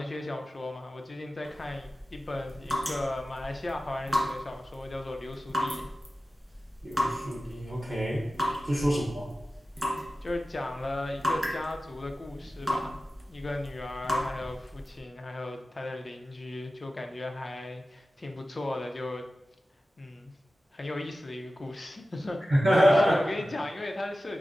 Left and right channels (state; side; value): normal; both; correlation 0.95